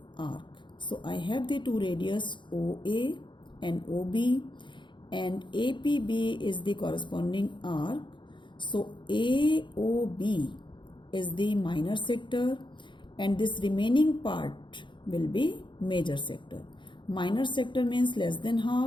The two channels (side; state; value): right; late; 0.23 ms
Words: arc. So I have the two radius OA and OB, and APB is the corresponding arc. So AOB is the minor sector and this remaining part will be major sector. Minor sector means less than